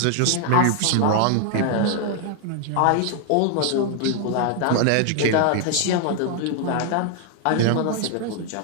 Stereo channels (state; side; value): different; both; correlation 0.00